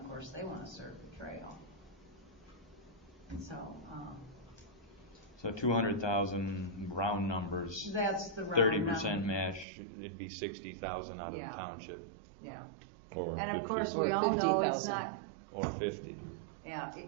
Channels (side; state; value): left; drops out; at 9.7 s